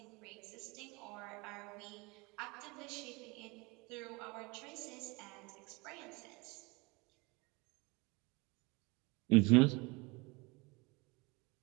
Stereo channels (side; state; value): left; quieter; 26.3 dB